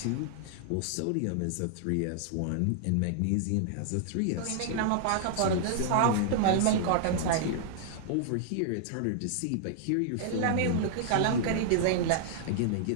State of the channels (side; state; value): both; different; correlation -0.01